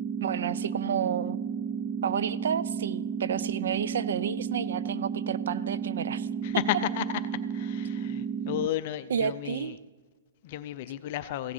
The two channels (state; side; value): quieter; left; 3.6 dB